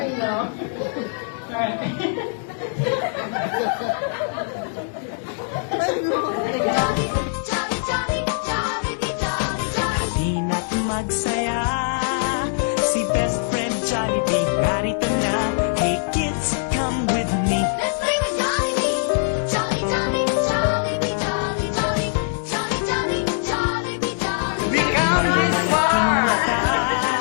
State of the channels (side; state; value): right; silent; digital silence